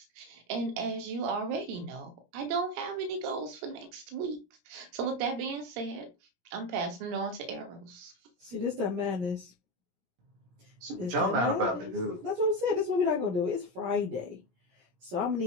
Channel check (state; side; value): late; left; 17 ms